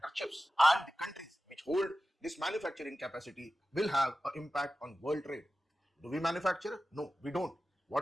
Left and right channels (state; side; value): normal; both; correlation 0.95